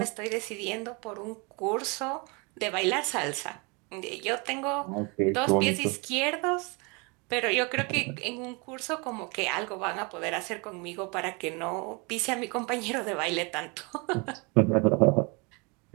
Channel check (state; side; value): quieter; left; 30.2 dB